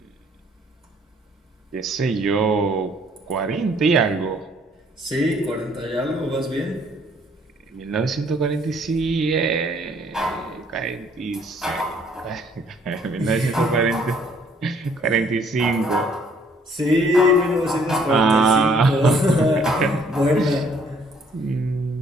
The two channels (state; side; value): normal; both; correlation 0.62